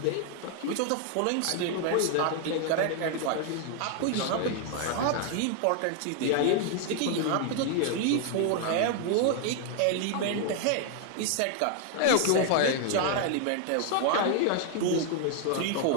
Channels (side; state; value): both; different; correlation 0.00